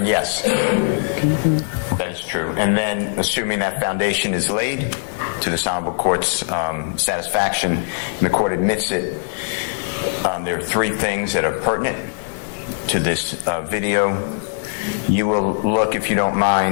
yes, that is true. And then, assuming that foundation is laid to this honorable court's satisfaction, and the court admits it, there are three things that are pertinent to this video. You will look, if you don't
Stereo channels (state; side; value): silent; right; 65 dB below the other